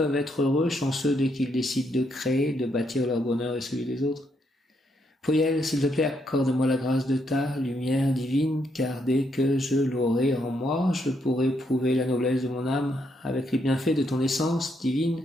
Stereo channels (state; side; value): normal; both; correlation 0.76